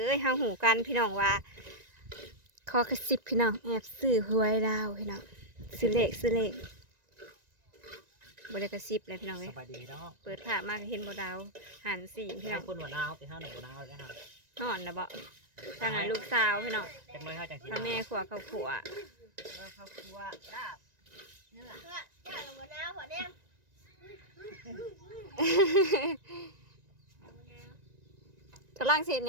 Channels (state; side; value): late; left; 1.9 ms